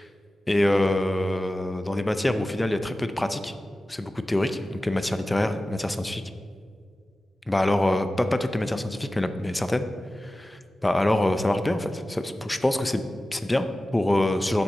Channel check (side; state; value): both; normal; correlation 0.95